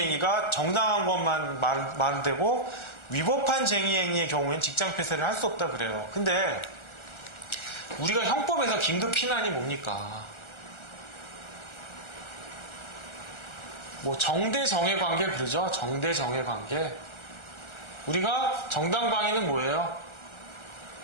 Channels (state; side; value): late; right; 1.4 ms